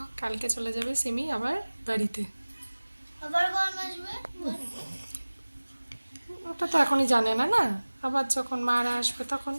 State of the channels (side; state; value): both; inverted; correlation -1.00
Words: কালকে চলে যাবে সিমি আবার বাড়িতে। আবার কখন আসবে? ওটা তো এখনই জানে না, না আবার যখন মারা আসবে তখন,